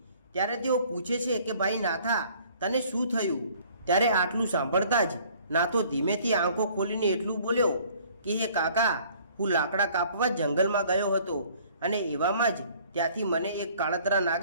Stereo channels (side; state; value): both; inverted; correlation -0.56